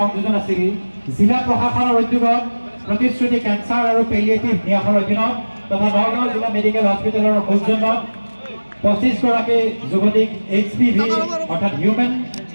আছিল জিলা প্ৰশাসনৰ উদ্যোগত প্ৰতিশ্ৰুতি কেঞ্চাৰ আৰু পেলিয়েটিভ ন্যাসৰ অধীনত তথা নগাঁও জিলা মেডিকেল হস্পিটেলৰ সৌজন্যত 25 গৰাকী যুৱতীক HPV অৰ্থাৎ হিউমেন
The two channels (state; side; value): inverted; both; correlation -1.00